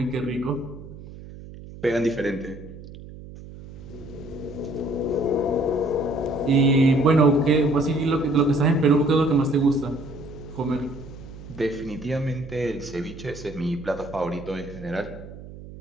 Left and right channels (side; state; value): right; noise; hum, 15 dB below the sound